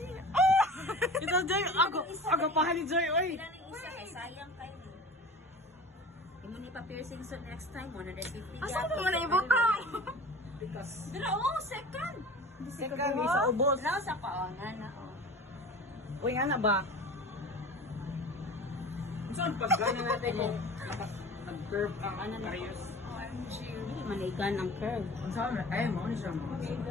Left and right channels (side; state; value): both; normal; correlation 0.39